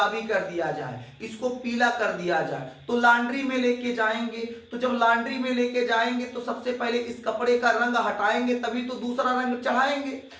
कर दिया जाए, इसको पीला कर दिया जाए, तो लॉन्ड्री में लेके जाएंगे। तो जब लॉन्ड्री में लेके जाएंगे तो सबसे पहले इस कपड़े का रंग हटाएंगे, तभी तो दूसरा रंग चढ़ाएंगे।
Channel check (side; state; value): both; identical; correlation 1.00